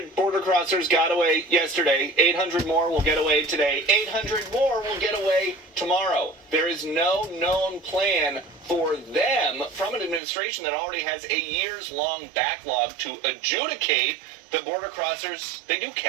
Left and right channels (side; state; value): left; drops out; at 10.2 s